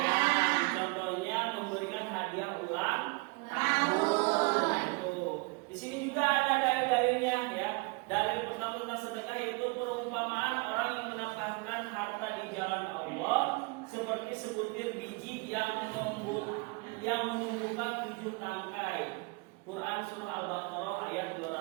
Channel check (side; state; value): left; quieter; 28.5 dB